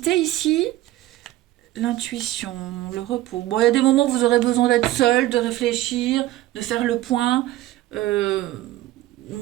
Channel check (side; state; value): left; quieter; 15.7 dB